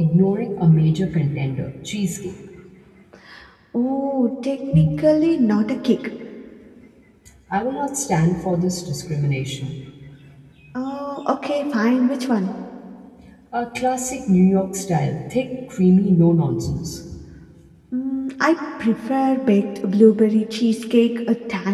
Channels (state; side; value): identical; both; correlation 1.00